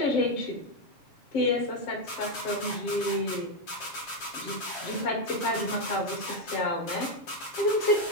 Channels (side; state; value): right; late; 7.2 ms